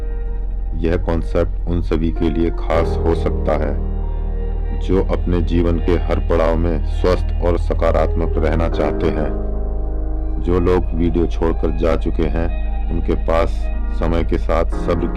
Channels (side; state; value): both; identical; correlation 1.00